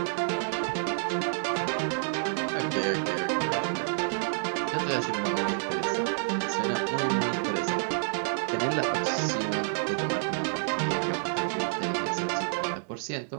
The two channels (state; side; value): silent; left; digital silence